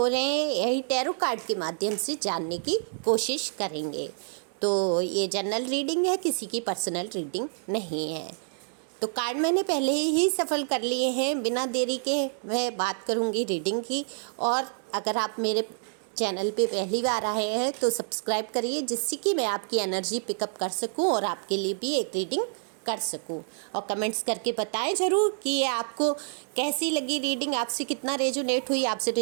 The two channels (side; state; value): left; silent; 59 dB below the other